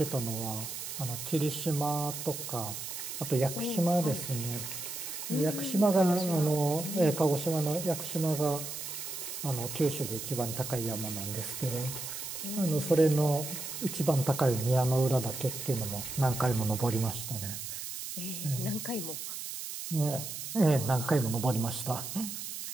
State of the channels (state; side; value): noise; right; hiss, 7 dB below the sound